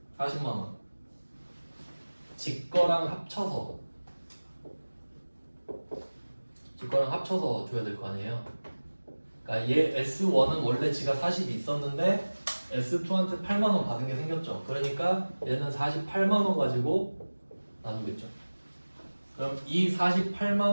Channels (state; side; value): inverted; both; correlation -1.00